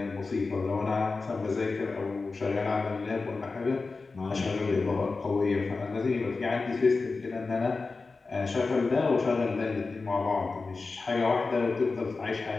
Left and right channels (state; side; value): quieter; right; 4.0 dB